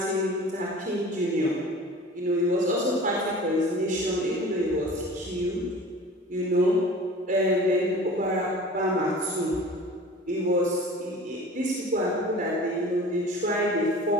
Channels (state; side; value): normal; both; correlation 0.41